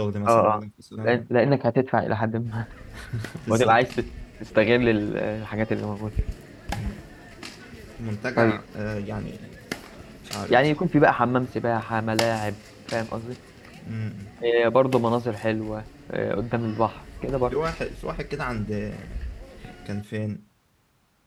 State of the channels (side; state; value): both; identical; correlation 1.00